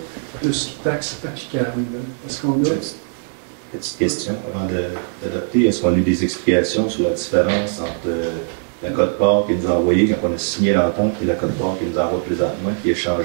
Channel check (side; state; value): left; silent; digital silence